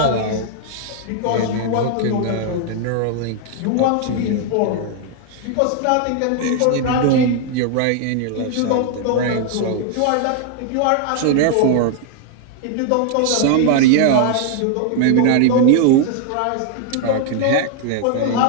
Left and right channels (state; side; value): different; both; correlation 0.00